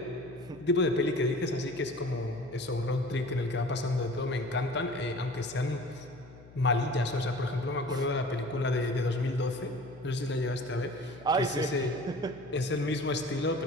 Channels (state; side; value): noise; left; hum, 21 dB below the sound